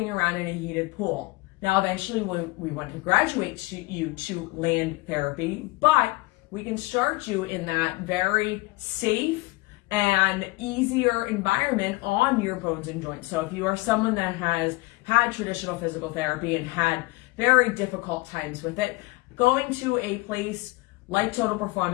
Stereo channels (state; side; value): quieter; right; 22.6 dB